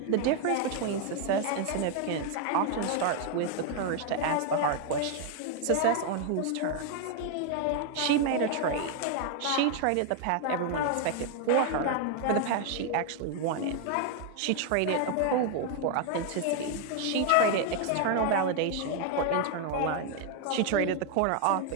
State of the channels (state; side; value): different; both; correlation 0.01